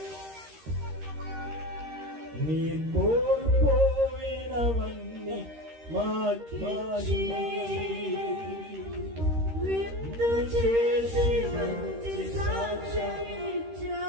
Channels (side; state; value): left; late; 13 ms